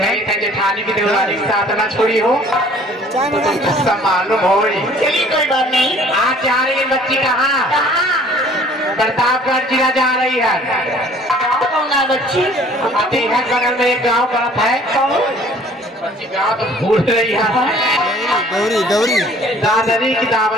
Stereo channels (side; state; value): both; normal; correlation 0.54